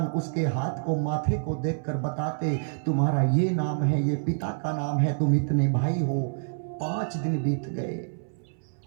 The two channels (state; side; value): silent; left; 60 dB below the other